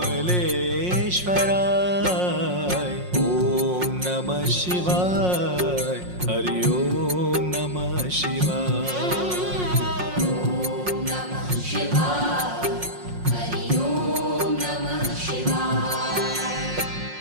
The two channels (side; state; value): left; late; 5.5 ms